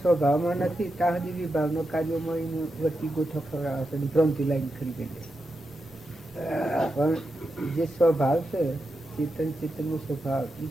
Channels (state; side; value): normal; both; correlation 0.87